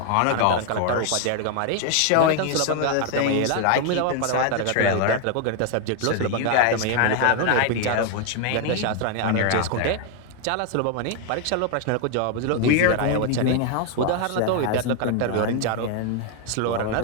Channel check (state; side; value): different; both; correlation 0.01